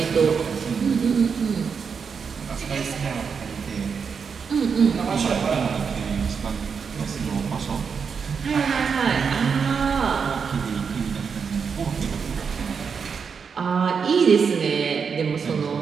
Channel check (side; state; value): left; quieter; 6.1 dB